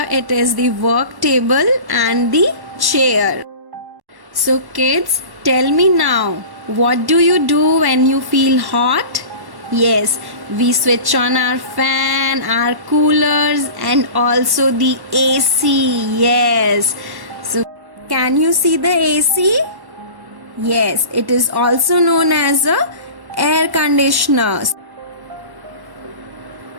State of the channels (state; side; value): late; left; 1.1 ms